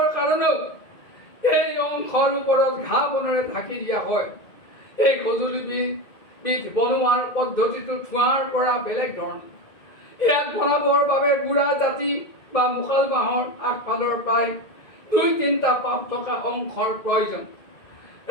কাৰণেও এই অংশৰ ওপৰত ঘাঁহ বনেৰে ঢাকি দিয়া হয়। এই সঁজুলিবিধ বনোৱাৰ পদ্ধতিটো ঠুহাৰ পৰা বেলেগ ধৰণৰ। ইয়াক বনাবৰ বাবে বুঢ়া জাতি বা মুকাল বাঁহৰ আগফালৰ প্ৰায় 2-3টা পাপ থকা অংশৰ প্ৰয়োজন।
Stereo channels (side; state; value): right; late; 2.1 ms